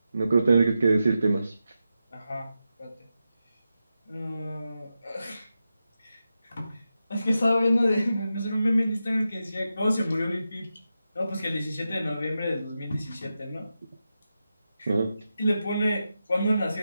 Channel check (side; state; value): both; inverted; correlation -0.89